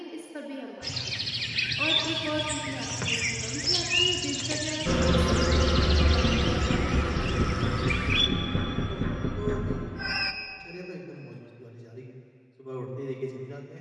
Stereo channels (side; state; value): both; identical; correlation 1.00